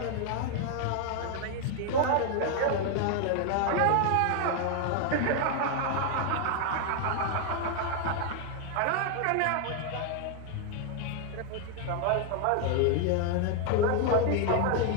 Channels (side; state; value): both; different; correlation 0.00